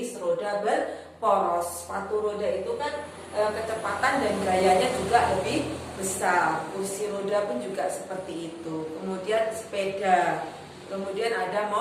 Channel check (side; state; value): both; identical; correlation 1.00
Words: roda berporos. Sepatu roda itu kan kecepatan dan gayanya juga lebih besar. Kursi roda pun juga seperti itu. Kemudian sepeda, kemudian ada